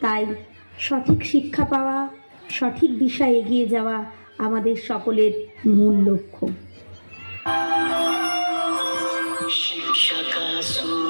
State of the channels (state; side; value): inverted; both; correlation -1.00